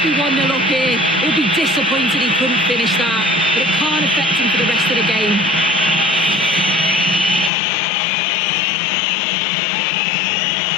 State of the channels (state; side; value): drops out; right; at 7.5 s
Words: be 1-0 up here. He'll be disappointed he couldn't finish that, but it can't affect him for the rest of the game.